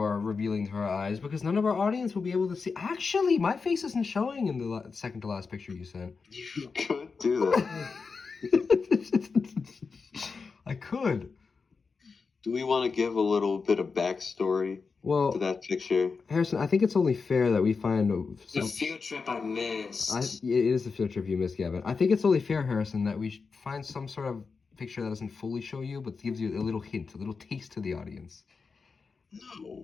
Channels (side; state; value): right; quieter; 4.9 dB